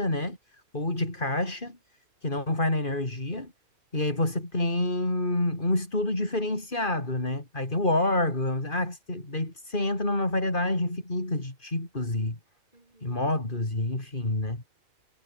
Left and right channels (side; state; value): right; late; 2.5 ms